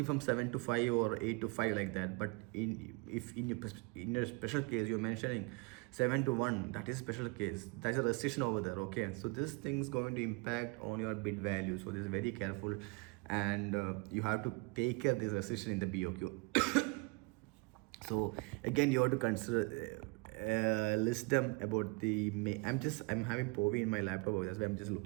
from 7 to 5 or 8 to 5 like that. But in your special case you're mentioning 7 to 1, that is special case, that's a restriction over there. Okay, so this thing is going to impact on your bid value. So this is very careful, and you have to take care of this restriction in the BOQ. So again, you have to consider list them about the I'm having POVI in my laptop, that's why I'm just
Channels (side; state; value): left; quieter; 28.3 dB